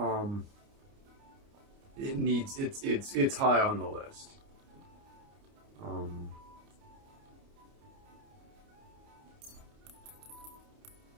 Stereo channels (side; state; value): left; late; 29 ms